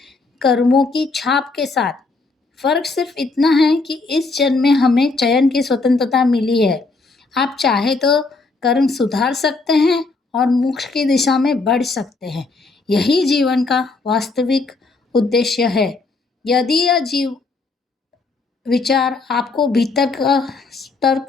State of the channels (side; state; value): right; quieter; 3.7 dB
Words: कर्मों की छाप के साथ। फ़र्क सिर्फ इतना है कि इस जन्म में हमें चयन की स्वतंत्रता मिली है। आप चाहे तो कर्म सुधार सकते हैं और मोक्ष की दिशा में बढ़ सकते हैं। यही जीवन का वास्तविक उद्देश्य है। यदि यह विचार आपको भीतर का स्तर